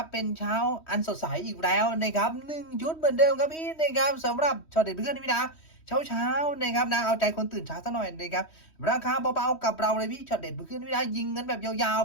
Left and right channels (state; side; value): late; right; 3.1 ms